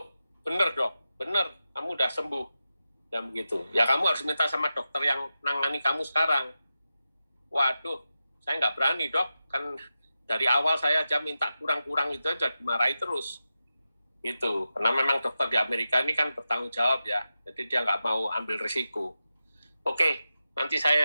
bener dok, bener, kamu udah sembuh. Dan begitu. Ya kamu harus minta sama dokter yang nangani kamu sekarang. Waduh, saya nggak berani dok, kan dari awal saya aja minta kurang-kurang itu aja dimarahi terus. Gitu, karena memang dokter di Amerika ini kan bertanggung jawab ya, jadi dia nggak mau ambil risiko. Oke, nanti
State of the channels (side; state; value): both; inverted; correlation -0.92